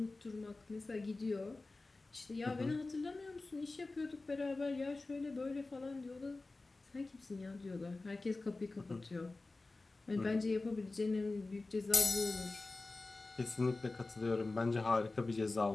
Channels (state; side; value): quieter; right; 3.3 dB